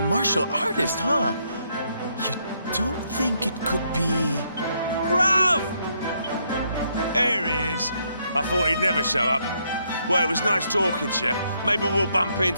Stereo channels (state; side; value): inverted; both; correlation -0.74